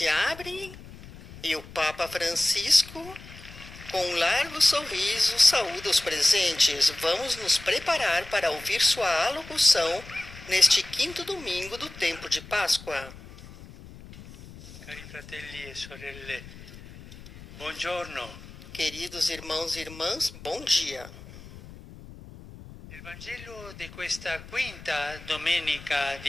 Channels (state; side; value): noise; left; rumble, 17 dB below the sound